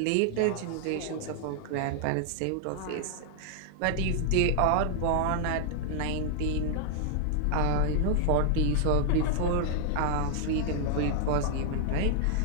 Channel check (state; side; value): different; both; correlation 0.00